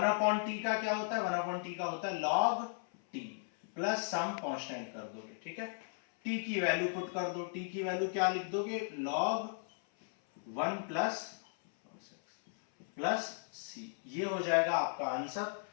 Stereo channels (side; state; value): right; silent; 54 dB below the other